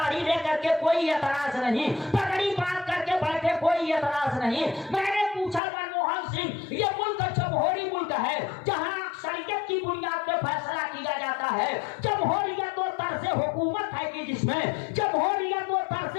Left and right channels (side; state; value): right; drops out; at 5.6 s